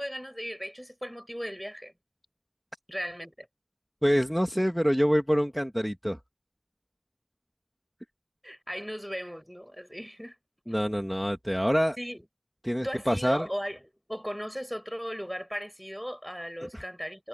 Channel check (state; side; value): identical; both; correlation 1.00